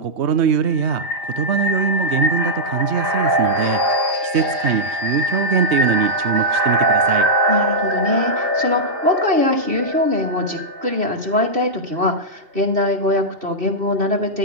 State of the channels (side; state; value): left; late; 3.2 ms